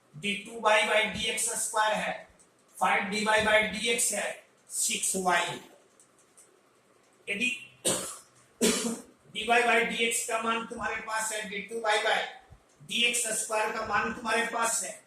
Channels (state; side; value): identical; both; correlation 1.00